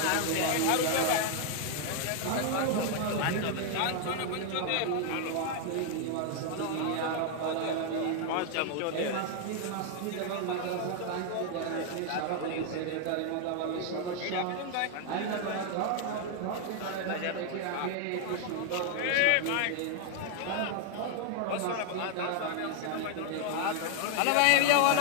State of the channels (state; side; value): different; both; correlation 0.00